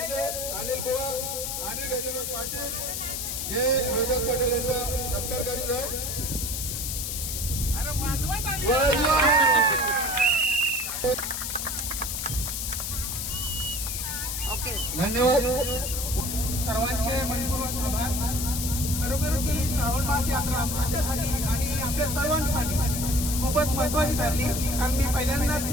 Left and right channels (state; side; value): noise; left; hiss, 3 dB below the sound